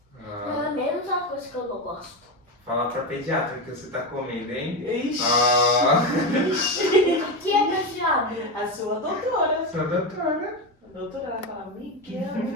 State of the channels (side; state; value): both; normal; correlation 0.15